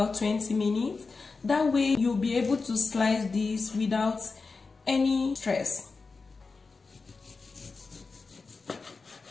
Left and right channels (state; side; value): quieter; right; 4.3 dB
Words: 20 minutes. That way you'll be able to slice this without any stress.